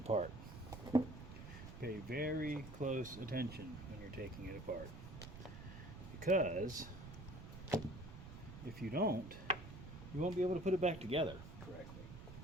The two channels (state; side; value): noise; right; rumble, 12 dB below the sound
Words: Pay very close attention when you're taking it apart. Because if you don't, you won't be able to put it back together correctly.